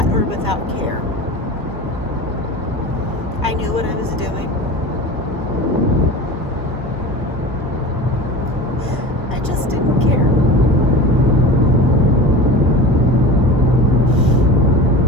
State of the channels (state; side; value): normal; both; correlation 0.34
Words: or without care. I knew what I was doing. I just didn't care.